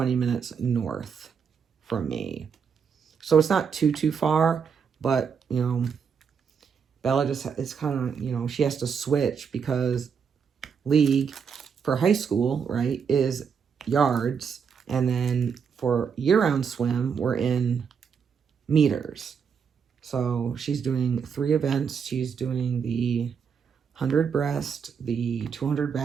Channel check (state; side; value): quieter; left; 6.6 dB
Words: minutes north from me. So it's not too far, but, you know, Bella just, it's kind of, you know, she has to switch because league for high school, right, is yards. And then for year-round swim, we're in meters. So she's doing 3 events. She's doing the 100 breast, the 200